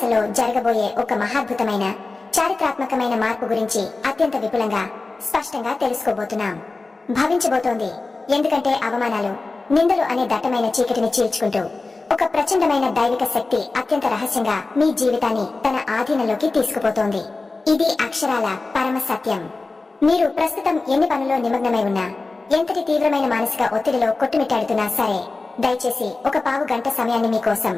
జరగబోయే ఒక మహాద్భుతమైన చారిత్రాత్మకమైన మార్పు గురించి అత్యంత విపులంగా స్పష్టంగా తెలుసుకోబోతున్నాం. భవించబోతోంది. ఎందుకంటే అవమానాలు, నిందలు అనే దట్టమైన చీకటిని చీల్చుకుంటూ ఒక ప్రచండమైన దైవిక శక్తి అత్యంత రహస్యంగా మీ జీవితాన్ని తన ఆధీనంలోకి తీసుకుపోతోంది. ఇది అక్షరాల పరమ సత్యం. మీరు ప్రస్తుతం ఎన్ని పనుల్లో నిమగ్నమై ఉన్నా, ఎంతటి తీవ్రమైన మానసిక ఒత్తిడిలో కొట్టుమిట్టాడుతున్నా సరే, దయచేసి ఒక పావు గంట సమయాన్ని మీకోసం,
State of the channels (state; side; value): quieter; right; 3.6 dB